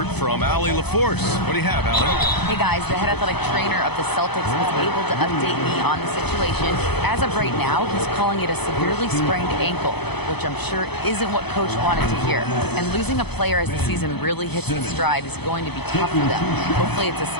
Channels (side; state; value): right; late; 0.98 ms